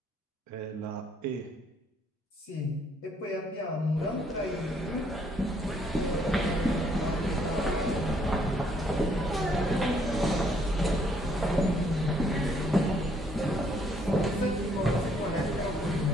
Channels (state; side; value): normal; both; correlation 0.67